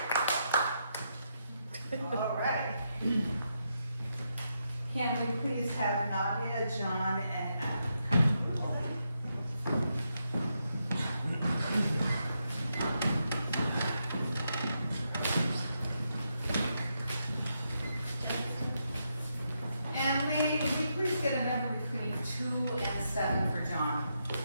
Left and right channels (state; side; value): inverted; both; correlation -0.82